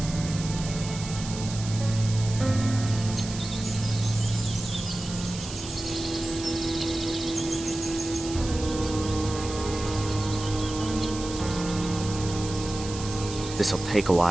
This'll take a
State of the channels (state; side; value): noise; right; hiss, 10 dB below the sound